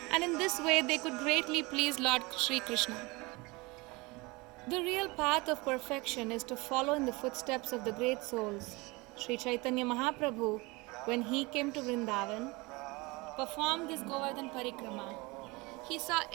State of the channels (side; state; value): left; quieter; 24.7 dB